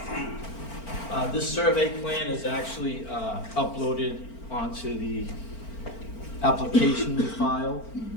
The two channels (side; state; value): right; late; 4.4 ms